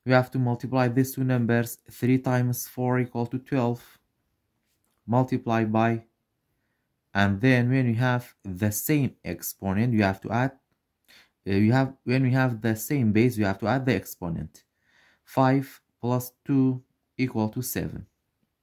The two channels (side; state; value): both; identical; correlation 1.00